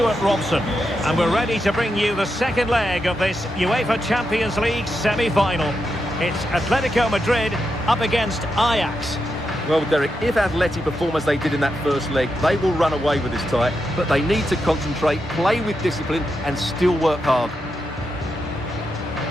Robson. And we're ready to bring you the second leg of this UEFA Champions League semi-final. It's Atletico Madrid up against Ajax. Well, Derek, if Atleti perform as they did in that first leg, they will run away with this tie. But they need to concentrate, play with discipline and still work hard.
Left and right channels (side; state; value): both; normal; correlation 0.86